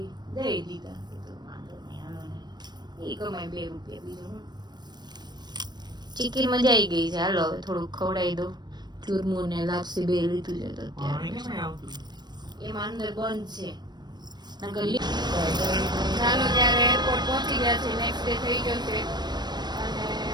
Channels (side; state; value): left; late; 0.21 ms